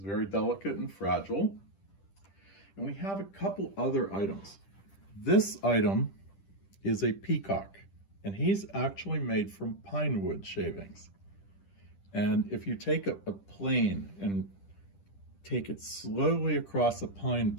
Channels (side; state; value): right; late; 10 ms